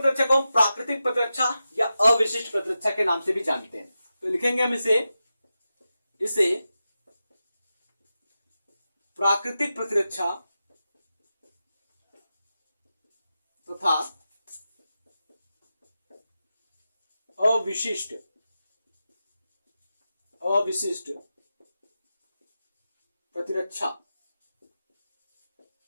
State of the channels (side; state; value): both; inverted; correlation -0.91